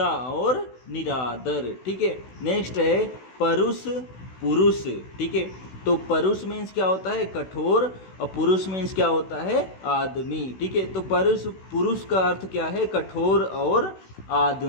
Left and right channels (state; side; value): late; right; 16 ms